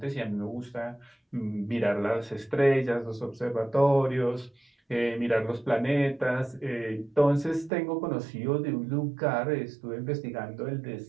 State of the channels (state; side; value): drops out; left; at 7.7 s